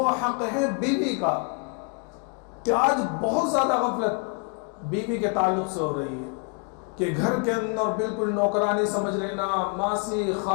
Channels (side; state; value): right; quieter; 34.5 dB